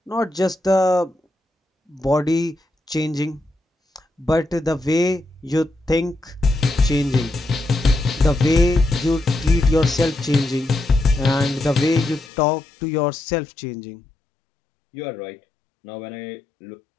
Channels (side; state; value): right; drops out; at 12.3 s